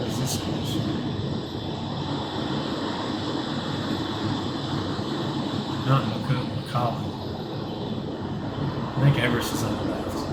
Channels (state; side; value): identical; both; correlation 1.00